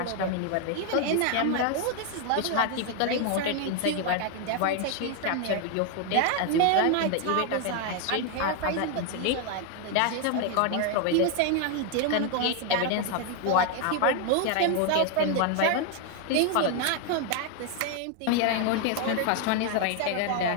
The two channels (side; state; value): both; different; correlation 0.01